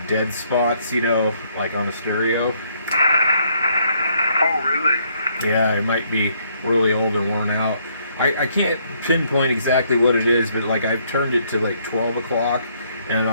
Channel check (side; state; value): both; inverted; correlation -0.69